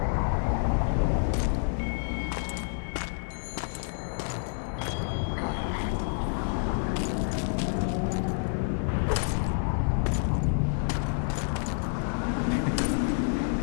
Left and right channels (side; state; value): right; silent; 57 dB below the other